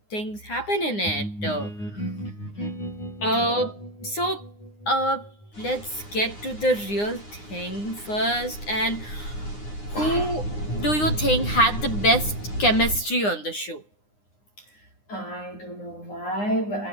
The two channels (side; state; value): right; late; 9.7 ms